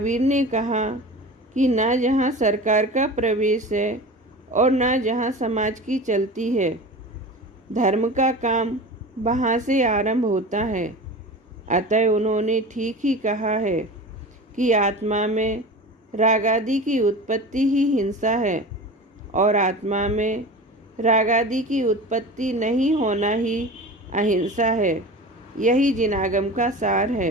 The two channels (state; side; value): normal; both; correlation 0.33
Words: ने कहा कि ना जहाँ सरकार का प्रवेश है और ना जहाँ समाज की चलती है। धर्म का काम वहाँ से आरंभ होता है। अतः उन्होंने ठीक ही कहा है कि आत्मा में रागादि की उत्पत्ति ही हिंसा है और आत्मा में रागादि की उत्पत्ति नहीं होना ही अहिंसा है। यही जिनागम का सार